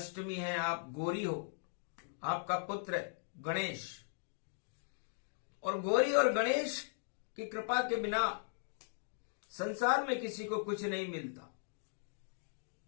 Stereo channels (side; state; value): right; silent; digital silence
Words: है, आप गौरी हो। आपका पुत्र गणेश, और गौरी और गणेश की कृपा के बिना संसार में किसी को कुछ नहीं मिलता।